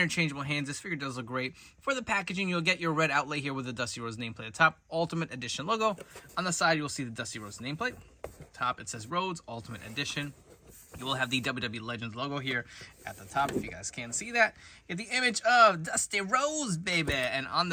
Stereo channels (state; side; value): identical; both; correlation 1.00